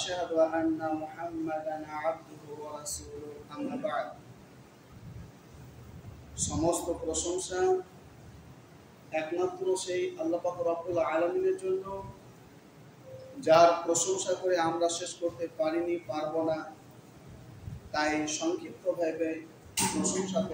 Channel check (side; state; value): both; identical; correlation 1.00